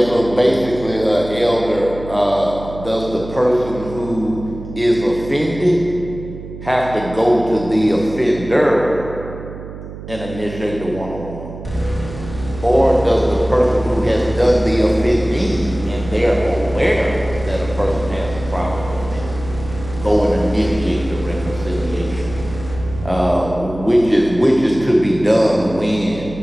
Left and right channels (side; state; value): right; noise; hum, 12 dB below the sound